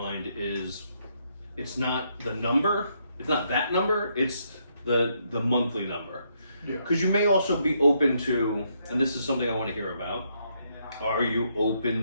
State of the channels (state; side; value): inverted; both; correlation -0.75